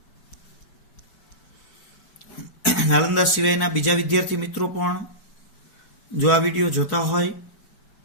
નાલંદા સિવાયના બીજા વિદ્યાર્થી મિત્રો પણ જો આ વિડીયો જોતા હોય,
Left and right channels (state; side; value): late; right; 4.6 ms